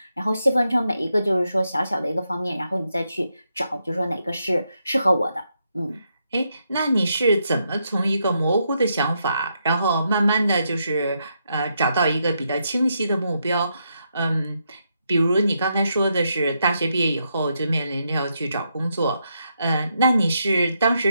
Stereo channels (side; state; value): both; inverted; correlation -0.80